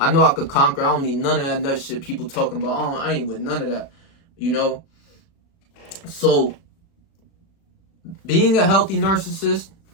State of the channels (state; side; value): late; right; 36 ms